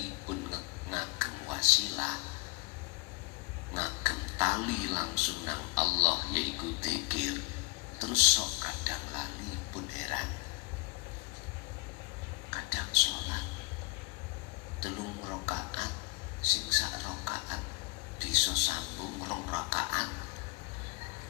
pun ngagem wasilah, ngagem tali langsung nang Allah yaiku zikir, terus sok kadang lali. Pun heran kadang sholat 3 rakaat sing sak rakaat bisa sambung 2 rakaat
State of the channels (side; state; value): right; quieter; 26.4 dB